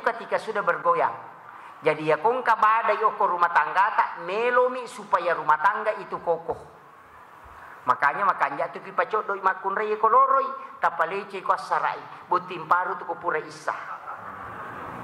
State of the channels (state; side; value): identical; both; correlation 1.00